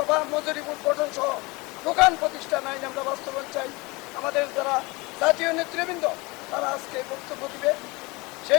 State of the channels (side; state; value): right; quieter; 24.9 dB